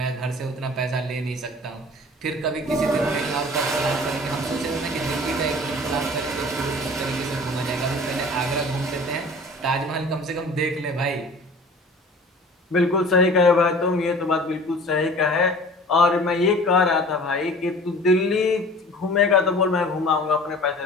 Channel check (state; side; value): normal; both; correlation 0.44